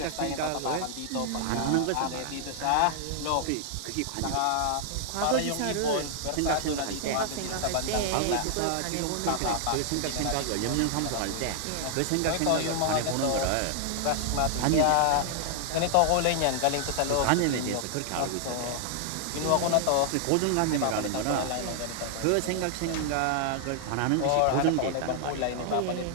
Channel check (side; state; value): both; different; correlation 0.00